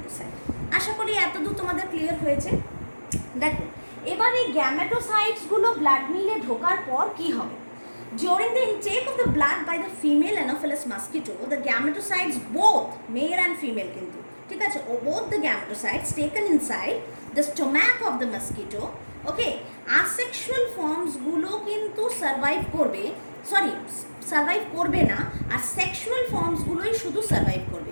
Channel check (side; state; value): both; inverted; correlation -1.00